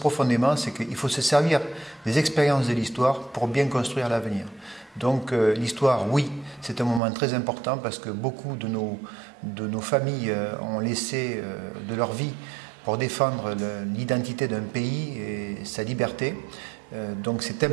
c'est qu'il faut se servir des expériences de l'histoire pour bien construire l'avenir. Donc l'histoire, oui, c'est un moment très important parce que beaucoup de nos familles ont laissé de leur vie pour défendre l'identité d'un pays et sa liberté. Donc c'est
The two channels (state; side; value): drops out; left; at 7.0 s